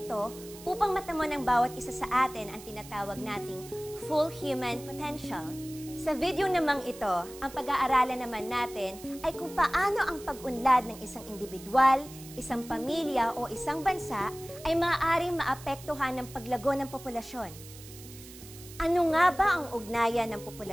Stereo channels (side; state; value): right; noise; hiss, 17 dB below the sound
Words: ito upang matamo ng bawat isa sa atin ang tinatawag nating full human potential. Sa video namang ito, ang pag-aaralan naman natin ay kung paano ang pag-unlad ng isang individual, isang pamilya o isang bansa ay maaaring maapektuhan ng paglago ng populasyon. Ano nga ba ang ugnayan ng